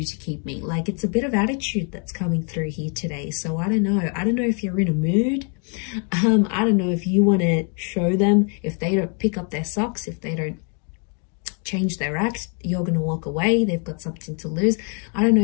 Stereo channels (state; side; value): quieter; right; 39.9 dB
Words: to keep me? Like, it's a bit of attitude that's coming through here today. So I don't know. I don't know if you're in a mood. I don't know if you want to show them. If they don't pick up their socks, if they don't change their act, you're going to walk away. They've got something to lose. I don't